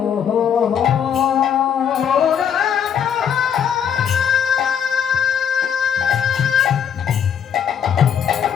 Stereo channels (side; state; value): right; quieter; 8.2 dB